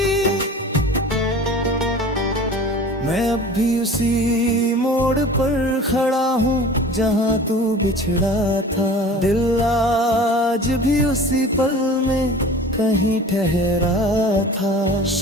मैं अब भी उसी मोड़ पर खड़ा हूँ जहाँ तू बिछड़ा था। दिल आज भी उसी पल में कहीं ठहरा था।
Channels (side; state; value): both; normal; correlation 0.41